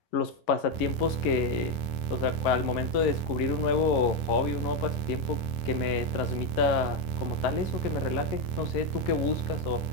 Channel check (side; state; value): right; late; 10 ms